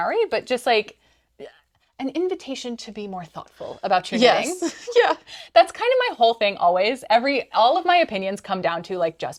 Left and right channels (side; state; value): both; identical; correlation 1.00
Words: but just like an invitation to be more thoughtful about your knitting. Yes. Yeah. That's kind of my whole thing always. All of my opinions come down to like